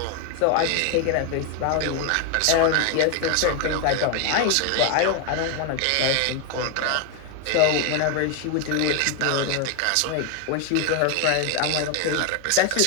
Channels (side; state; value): both; different; correlation 0.01